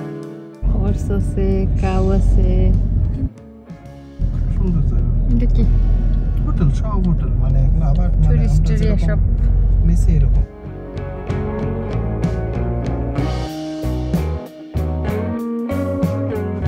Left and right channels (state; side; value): identical; both; correlation 1.00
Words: হর্স আছে, কাউ আছে। সুন্দর জায়গা। এটা কি হোটেল? সব হোটেল, মানে এগুলো আবার টুরিস্ট এরিয়া সব নিচে এরকম।